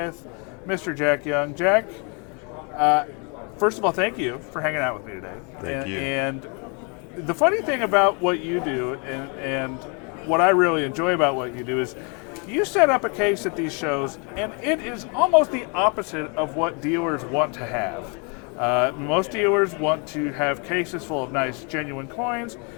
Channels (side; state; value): right; quieter; 34.9 dB